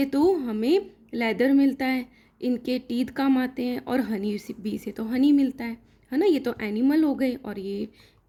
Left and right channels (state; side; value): identical; both; correlation 1.00